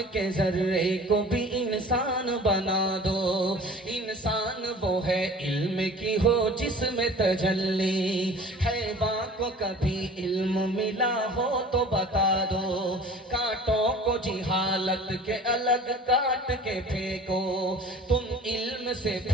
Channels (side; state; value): both; normal; correlation 0.44